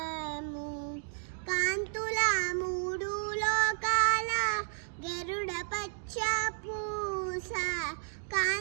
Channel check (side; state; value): left; silent; digital silence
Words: కాంతుల మూడు లోకాల గరుడ పచ్చ పూస